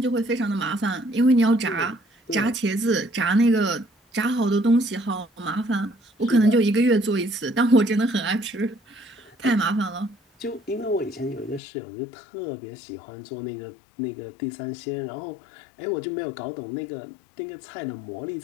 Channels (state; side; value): drops out; right; at 11.6 s